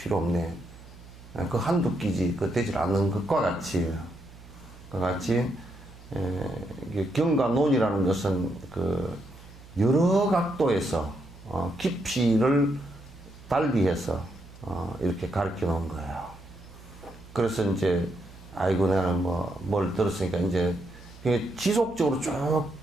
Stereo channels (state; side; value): noise; right; hum, 20 dB below the sound